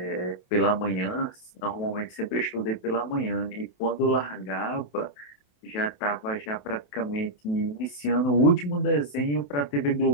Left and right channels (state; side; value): late; right; 28 ms